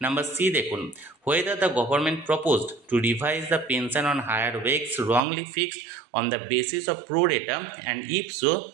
নাম্বার সি দেখুন, whether the government proposed to revise the pension on higher wakes wrongly fixed on the basis of pro rata and if so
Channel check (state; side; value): drops out; left; at 5.2 s